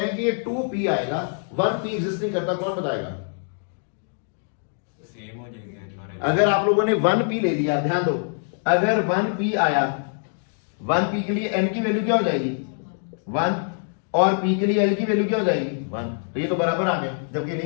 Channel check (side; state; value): right; silent; digital silence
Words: हैं कि ये 2p आएगा, 1p एग्जिस्ट नहीं करता, कौन बताएगा? सेम हो जाएगा। अगर आप लोगों ने 1p ले लिया, ध्यान दो, अगर 1p आया, 1p के लिए n की वैल्यू क्या हो जाएगी? 1, और p के लिए l की वैल्यू क्या हो जाएगी? 1। तो ये तो बराबर आ गया, जबकि